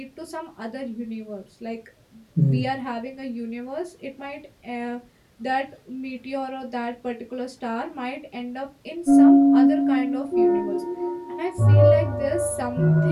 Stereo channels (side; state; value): both; identical; correlation 1.00